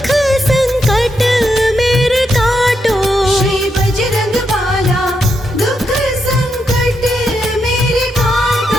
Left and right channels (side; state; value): both; normal; correlation 0.82